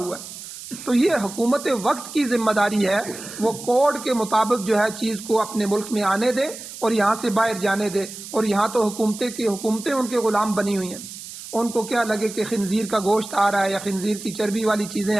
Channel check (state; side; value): noise; right; hiss, 12 dB below the sound